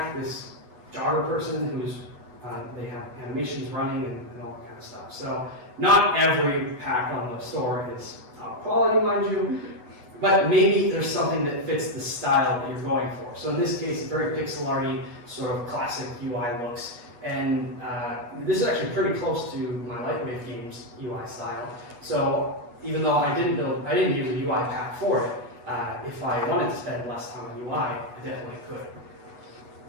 This jogger person who's they have animations running and all that kind of stuff. So not every pack on the store is top quality, mind you, but maybe there's something that fits the style that you're going for. So in this case, very pixel arty, sort of classic UI looks. And this is actually pretty close to my Lightwave Games UI style. So even though I didn't use a UI pack for it, if I wanted to spend less time on UI, I definitely could.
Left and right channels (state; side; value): late; left; 8.2 ms